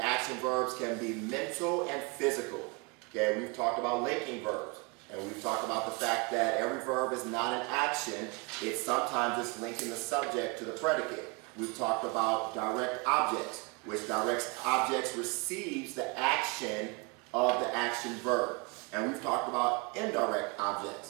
action verbs can be mental and physical. Okay, we've talked about linking verbs, and we've talked about the fact that every verb is not an action. It's sometimes just linking the subject to the predicate. We've talked about direct objects, which direct objects receives the action of the action verb. And we've talked about indirect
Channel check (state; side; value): quieter; left; 29.2 dB